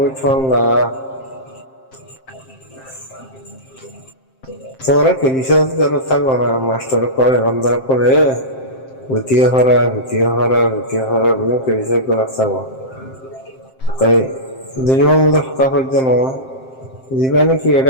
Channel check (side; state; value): right; late; 7.6 ms